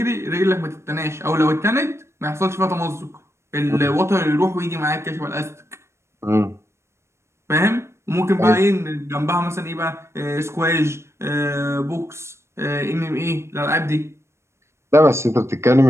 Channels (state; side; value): late; left; 0.13 ms